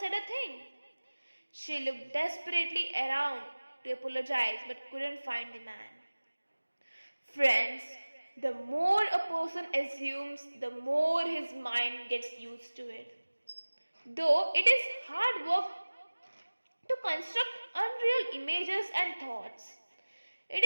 a thing. She looked desperately around to apologize but couldn't find the man. Friends, the more a person assumes, the more his mind gets used to it. Though it is hard work to construct unreal images and thoughts. It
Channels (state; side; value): inverted; both; correlation -1.00